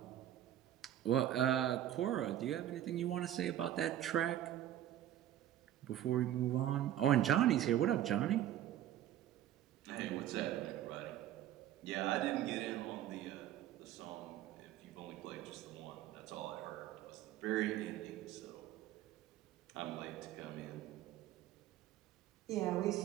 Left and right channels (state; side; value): quieter; left; 12.0 dB